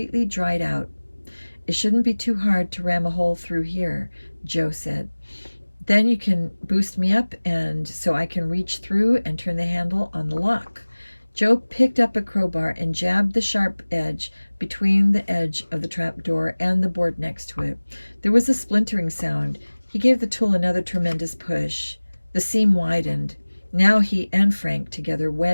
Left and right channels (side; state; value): both; inverted; correlation -1.00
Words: dried out. "It shouldn't be too hard to ram a hole through here," Joe said. "Then you can boost me up and so I can reach through and turn the handle on the lock." Joe picked up a crowbar and jabbed the sharp edge between the edge of the trapdoor and the board next to it. There was a splintering sound. He gave the tool another tremendous push. The seam widened. Now he and Frank together